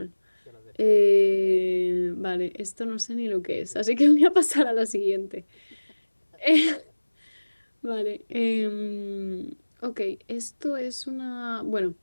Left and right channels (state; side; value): inverted; both; correlation -1.00